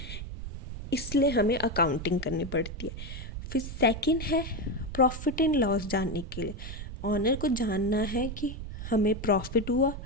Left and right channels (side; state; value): right; noise; rumble, 8 dB below the sound